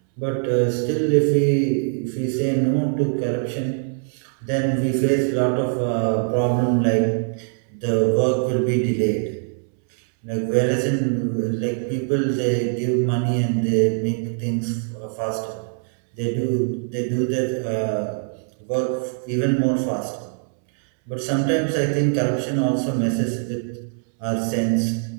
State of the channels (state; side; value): silent; left; 64 dB below the other